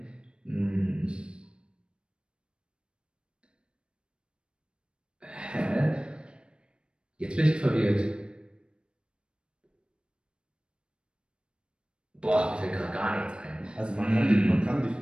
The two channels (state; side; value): late; left; 0.055 ms